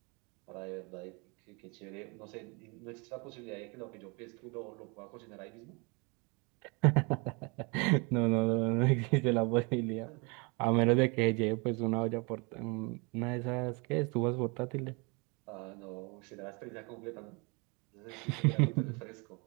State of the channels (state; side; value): quieter; left; 30.7 dB